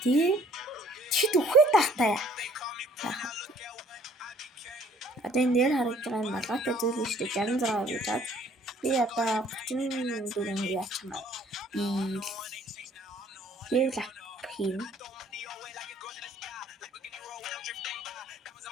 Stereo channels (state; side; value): normal; both; correlation 0.58